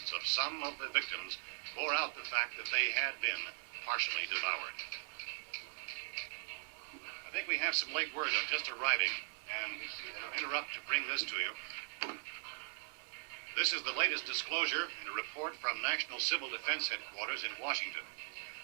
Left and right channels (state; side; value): silent; left; 51 dB below the other